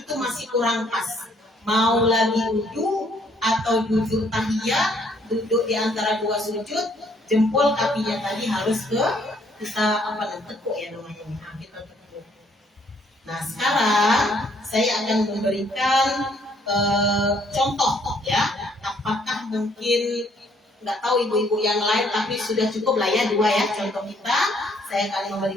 itu masih kurang pas. Mau lagi duduk atau duduk tahiyat, duduk di antara dua sujud, jempol kakinya tadi harus ke kita tekuk ya namanya. Nah, kita tekuk. Nah, sekarang saya akan memberikan contoh ya. Apakah mungkin nggak tahu ibu-ibu yang lain, tapi sudah cukup lah ya dua ya contoh kita. Saya akan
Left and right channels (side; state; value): both; normal; correlation 0.66